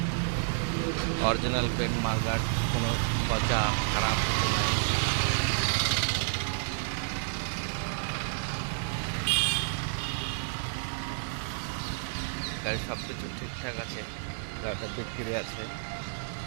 অরিজিনাল পেন্ট মার্কার, কোনো পচা খারাপ কিছু নেই। গাড়ির সব কিছু ঠিকঠাক আছে। গাড়িটা বিক্রি আছে।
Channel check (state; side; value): silent; left; digital silence